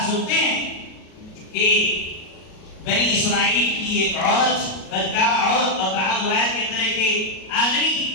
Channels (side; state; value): right; late; 37 ms